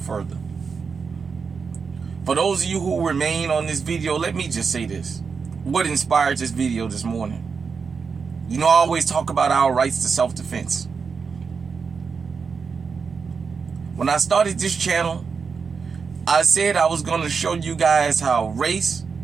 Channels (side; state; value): left; quieter; 5.5 dB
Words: further. For those of you who remain on this video, let me just say this. What inspired this video this morning? You know, I always talk about our rights to self-defense. When I started this channel, I said I was going to show you guys how race,